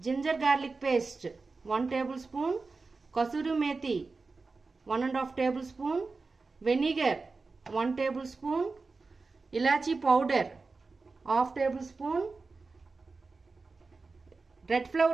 garlic paste 1 tablespoon, kasuri methi 1.5 tablespoon, vinegar 1 tablespoon, ఇలాచీ powder 1/2 tablespoon, red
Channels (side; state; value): left; quieter; 4.0 dB